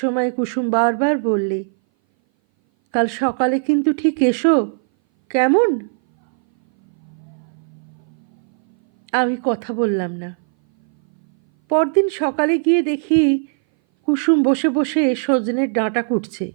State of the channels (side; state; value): left; silent; 60 dB below the other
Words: কুসুম বারবার বললে, কাল সকালে কিন্তু ঠিক এসো, কেমন? আমি কথা বললাম না। পরদিন সকালে গিয়ে দেখি কুসুম বসে বসে সজনের ডাঁটা কুটছে।